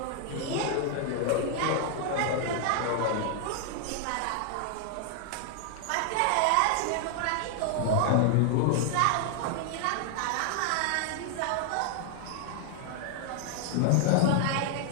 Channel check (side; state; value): both; different; correlation 0.00